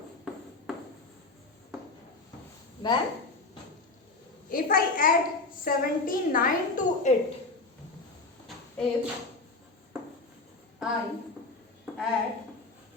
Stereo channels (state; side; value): quieter; right; 3.5 dB